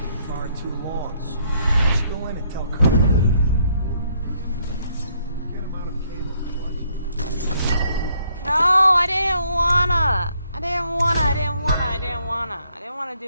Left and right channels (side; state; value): both; inverted; correlation -0.69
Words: I didn't want to